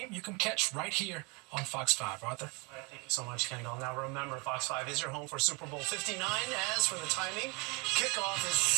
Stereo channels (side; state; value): left; quieter; 30.1 dB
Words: you can catch right here on Fox 5. Arthur? All right, thank you so much, Kendall. Now remember, Fox 5 is your home for Super Bowl 59. As for the timing, kickoff is